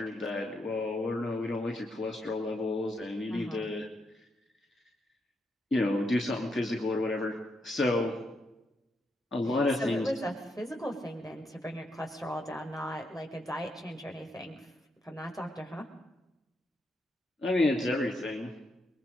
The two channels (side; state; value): both; normal; correlation 0.80